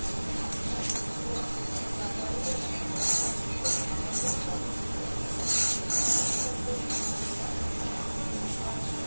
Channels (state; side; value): inverted; both; correlation -1.00